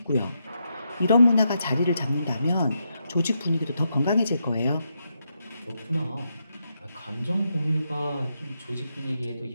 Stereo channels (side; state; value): both; inverted; correlation -0.82